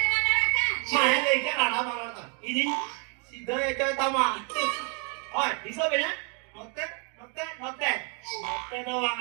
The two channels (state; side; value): quieter; left; 36.7 dB